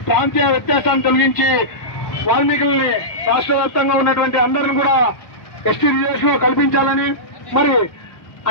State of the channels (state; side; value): late; right; 1.1 ms